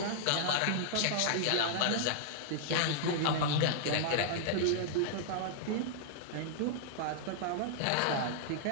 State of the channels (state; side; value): different; both; correlation -0.01